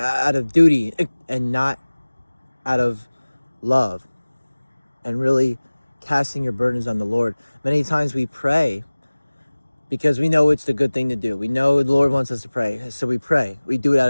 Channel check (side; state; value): both; inverted; correlation -1.00